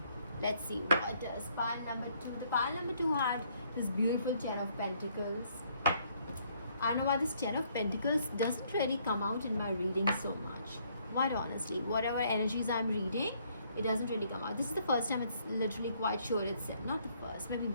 Let's see, what does pile number 2? The pile number 2 had this beautiful 10 of Pentacles. I don't know why this 10 of Pentacles doesn't really come out in my reading so much. Quite honestly, whatever energies I'm reading, it doesn't really come out. This is the first time it's literally quite sure it's not the first, maybe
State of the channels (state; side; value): inverted; both; correlation -0.67